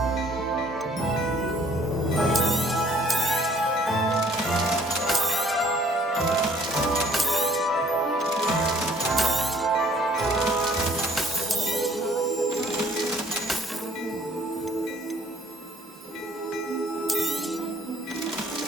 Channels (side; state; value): both; normal; correlation 0.58